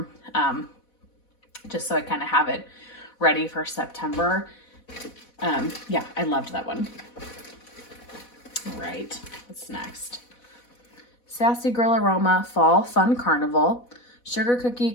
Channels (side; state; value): right; late; 4.1 ms